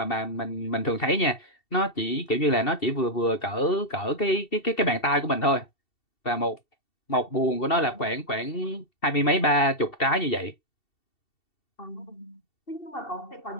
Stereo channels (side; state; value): right; late; 2.7 ms